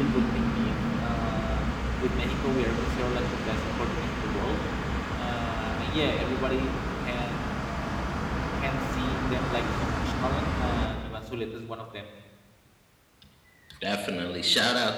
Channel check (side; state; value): both; identical; correlation 1.00